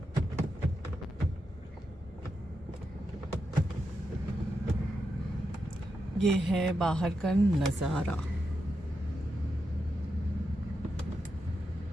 ये है बाहर का नज़ारा।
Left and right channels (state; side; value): normal; both; correlation 0.86